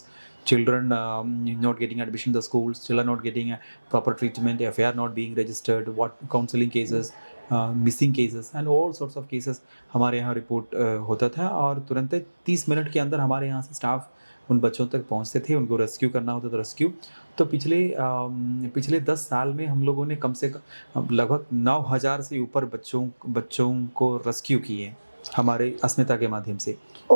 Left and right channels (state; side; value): inverted; both; correlation -1.00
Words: children not getting admission in the schools, children not getting proper treatment, FIR not being registered, what counseling cases, missing cases and all sorts of cases हमारे यहाँ report होता था। और तुरंत 30 minute के अंदर हमारे यहाँ से स्टाफ उन बच्चों तक पहुँचते थे, उनको रेस्क्यू करना होता था। रेस्क्यू तो पिछले 10 साल में हम लोगों ने कम से कम लगभग 9000 से ऊपर बच्चों को रेस्क्यू किए हमारे अस्मिता के माध्यम से।